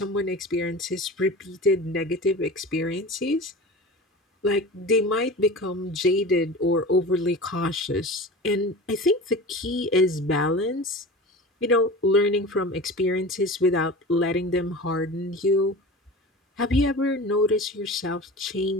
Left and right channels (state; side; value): normal; both; correlation 0.34